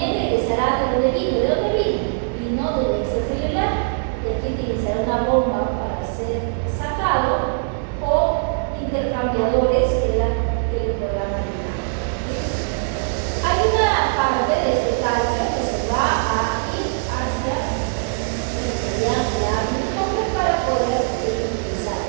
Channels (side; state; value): left; silent; digital silence